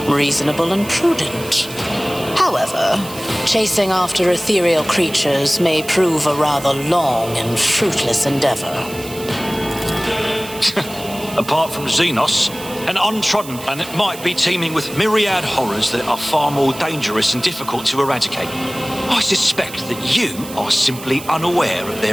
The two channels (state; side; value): noise; right; hiss, 14 dB below the sound